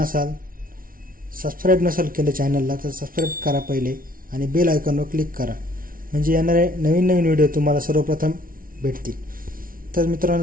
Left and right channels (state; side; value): late; left; 0.42 ms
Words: सबस्क्राईब नसाल केलं चॅनलला तर सबस्क्राईब करा पहिले आणि बेल आयकॉनवर क्लिक करा, म्हणजे येणारे नवीन व्हिडिओ तुम्हाला सर्वप्रथम भेटतील. तर